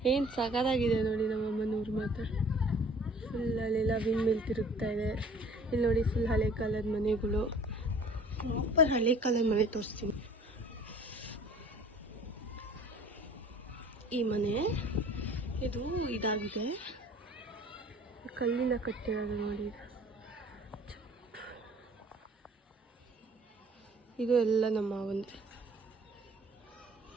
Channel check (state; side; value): normal; both; correlation 0.51